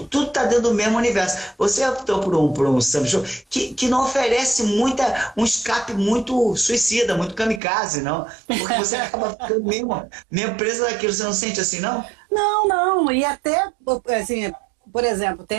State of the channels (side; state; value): left; drops out; at 7.6 s